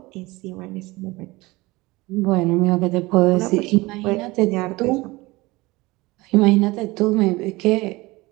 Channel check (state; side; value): quieter; left; 21.6 dB